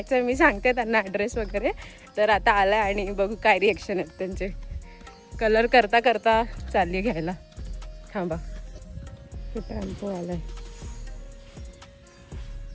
मी सांगते त्यांना ॲड्रेस वगैरे. तर आता आलाय आणि बघू काय रिॲक्शन आहेत त्यांचे. कलर करता करता चालली घ्यायला. थांबा, टेम्पो आलाय.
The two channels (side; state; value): both; identical; correlation 1.00